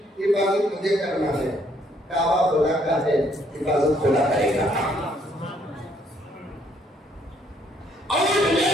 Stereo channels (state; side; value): normal; both; correlation 0.68